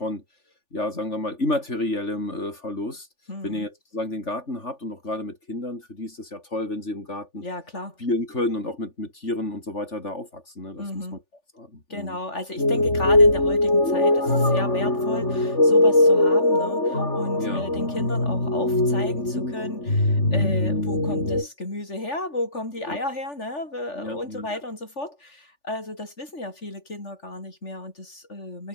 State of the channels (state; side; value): late; right; 3.4 ms